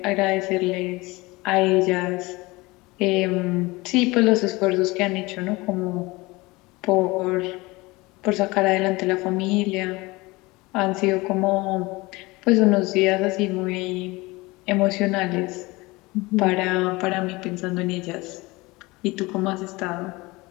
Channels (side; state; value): right; quieter; 22.6 dB